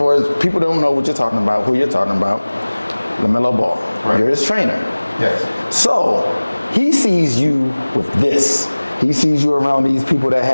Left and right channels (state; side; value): inverted; both; correlation -1.00